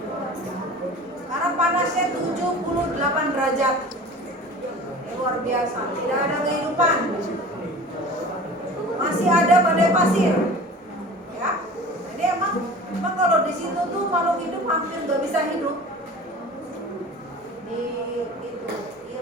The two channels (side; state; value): both; normal; correlation 0.40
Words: karena panasnya 78 derajat. Luar biasa, tidak ada kehidupan, masih ada badai pasir ya. Jadi emang kalau di situ tuh makhluk hidup hampir nggak bisa hidup di itu